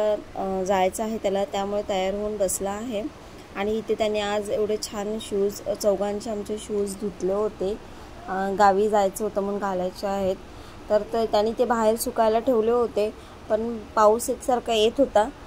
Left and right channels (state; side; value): identical; both; correlation 1.00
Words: जायचं आहे त्याला, त्यामुळे तयार होऊन बसला आहे। आणि इथे त्याने आज एवढे छान शूज, चौघांचे आमचे शूज धुतले होते, गावी जायचं होतं म्हणून घालायचे आहेत। तर त्याने ते बाहेर सुकायला ठेवले होते, पण पाऊस एकसारखा येत होता